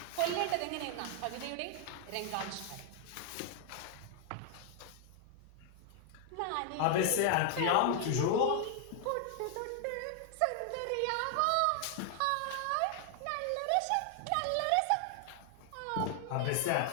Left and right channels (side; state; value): both; different; correlation 0.00